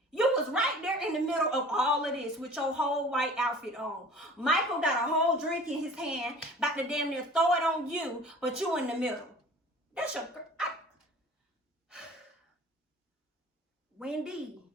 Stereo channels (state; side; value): normal; both; correlation 0.45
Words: You was right there in the middle of all of this with your whole white outfit on. Michael got a whole drink in his hand, about to damn near throw it on you, but you in the middle. That's your girl. Wendy.